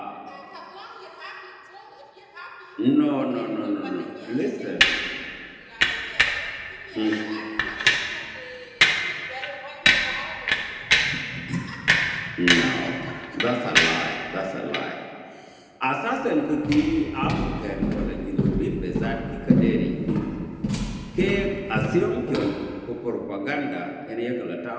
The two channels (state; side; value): identical; both; correlation 1.00